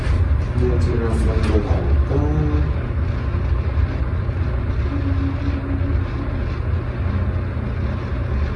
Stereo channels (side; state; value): both; identical; correlation 1.00